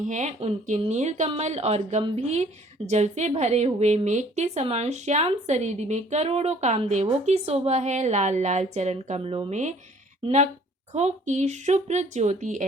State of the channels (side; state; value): both; normal; correlation 0.57